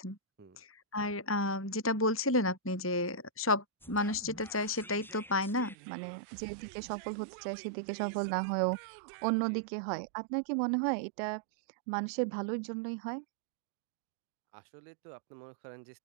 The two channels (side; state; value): left; drops out; at 5.8 s